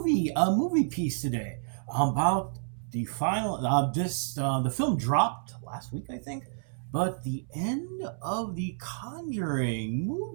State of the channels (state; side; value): silent; left; 58 dB below the other